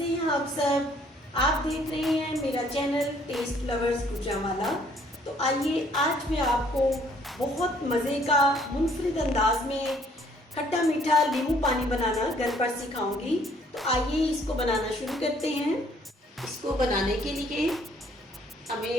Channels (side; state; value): both; normal; correlation 0.62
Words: हैं आप सब? आप देख रहे हैं मेरा चैनल टेस्ट लवर्स गुजरांवाला। तो आइए आज मैं आपको बहुत मज़े का मुनफरिद अंदाज में खट्टा मीठा नींबू पानी बनाना घर पर सिखाऊंगी। तो आइए इसको बनाना शुरू करते हैं। इसको बनाने के लिए